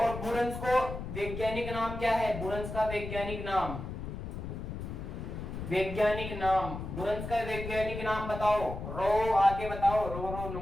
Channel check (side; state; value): left; noise; rumble, 7 dB below the sound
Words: बुरंस को वैज्ञानिक नाम क्या है? बुरंस का वैज्ञानिक नाम, वैज्ञानिक नाम, बुरंस का वैज्ञानिक नाम बताओ। रो आगे बताओ, रो रो